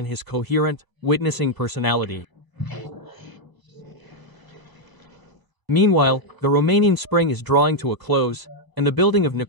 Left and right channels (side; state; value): left; late; 1.1 ms